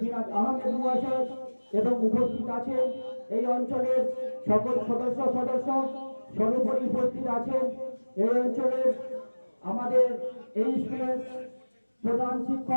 জিনাত আহমেদ মহাশয়, এবং উপস্থিত আছেন এই অঞ্চলের সকল সদস্য। সর্বোপরি উপস্থিত আছেন এই অঞ্চলের আমাদের এই স্কুলের প্রধান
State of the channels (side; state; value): both; inverted; correlation -1.00